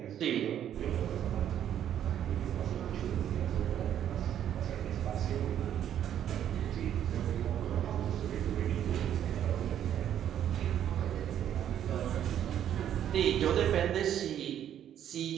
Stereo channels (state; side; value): quieter; left; 10.3 dB